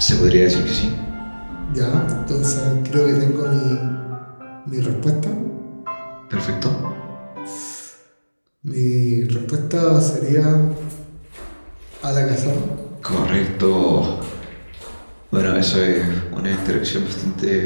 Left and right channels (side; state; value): both; inverted; correlation -1.00